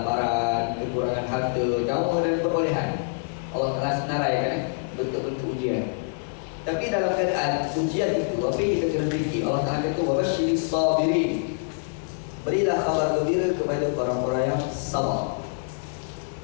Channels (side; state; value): right; silent; digital silence